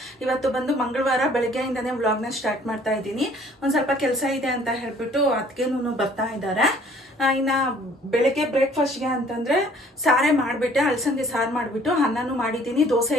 ಇವತ್ತು ಬಂದು ಮಂಗಳವಾರ ಬೆಳಗ್ಗೆಯಿಂದನೇ ವ್ಲಾಗ್ನ ಸ್ಟಾರ್ಟ್ ಮಾಡ್ತಾ ಇದ್ದೀನಿ. ಒಂದು ಸ್ವಲ್ಪ ಕೆಲಸ ಇದೆ ಅಂತ ಹೇಳ್ಬಿಟ್ಟು ಅದಕ್ಕೇನು ಬರ್ತಾ ಇದ್ದಾರೆ. ಇನ್ನು ಬೆಳಗ್ಗೆ ಬ್ರೇಕ್ಫಾಸ್ಟ್ಗೆ ಅಂತಂದರೆ ಸಾರೇ ಮಾಡಿಬಿಟ್ಟೆ, ಅಲಸಂದೆ ಸಾರು ಮಾಡಿಬಿಟ್ಟು ಅನ್ನನೂ ಮಾಡಿದ್ದೀನಿ. ದೋಸೆ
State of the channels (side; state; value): both; normal; correlation 0.57